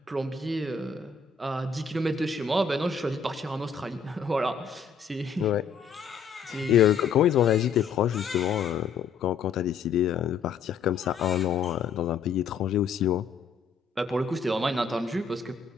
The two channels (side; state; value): right; quieter; 5.8 dB